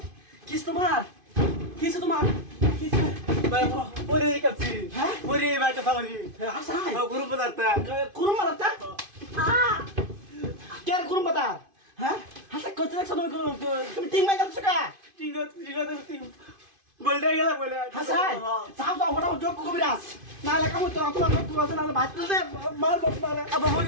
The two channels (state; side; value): late; left; 2.5 ms